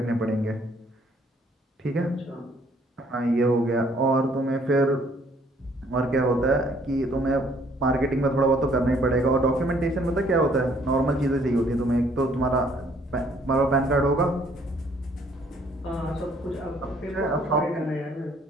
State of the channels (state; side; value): normal; both; correlation 0.63